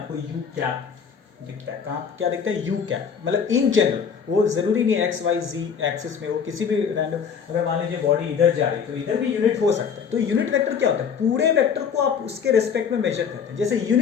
यू कैप दिखता है, कहाँ क्या दिखता है, यू कैप। मतलब इन जनरल, वो जरूरी नहीं एक्स वाई जी एक्सिस में हो, किसी भी रैंडम, अगर मान लीजिए बॉडी इधर जा रही है तो इधर भी यूनिट हो सकता है। तो यूनिट वेक्टर क्या होता है, पूरे वेक्टर को आप उसके रेस्पेक्ट में मेजर करते हैं। जैसे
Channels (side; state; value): right; quieter; 6.8 dB